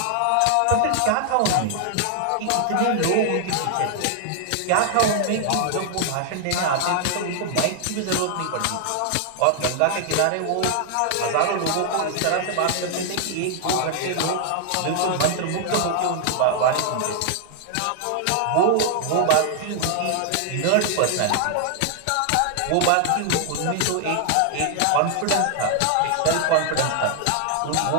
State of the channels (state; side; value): different; both; correlation 0.00